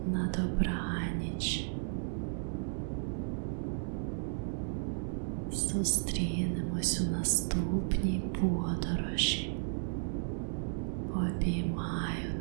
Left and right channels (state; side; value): silent; left; 55 dB below the other